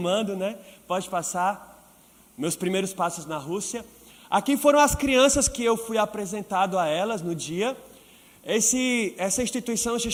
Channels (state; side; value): identical; both; correlation 1.00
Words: né? Pode passar. Meus primeiros passos na Rússia. Aqui foram as crianças que eu fui apresentado a elas no dia. Essa instituição se